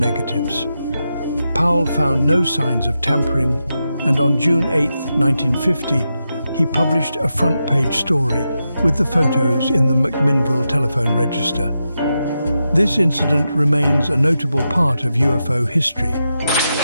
Powell found no signs of tampering, and on June 8, 1950, he published a front-page story with the photos in the McMinnville telephone register. This incident remains a notable part of UFO history.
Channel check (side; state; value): both; inverted; correlation -0.88